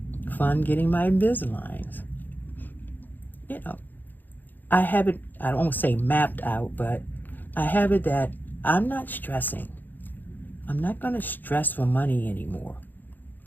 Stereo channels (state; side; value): late; right; 0.087 ms